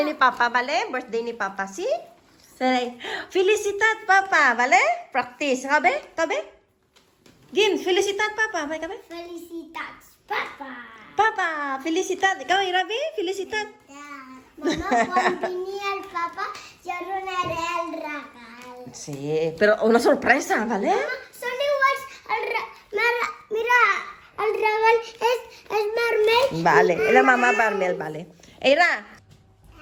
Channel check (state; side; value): identical; both; correlation 1.00